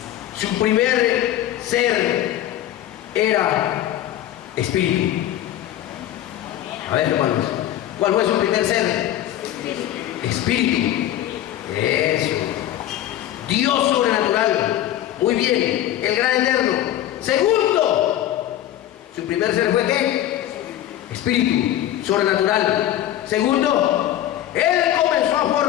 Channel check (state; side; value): quieter; right; 12.7 dB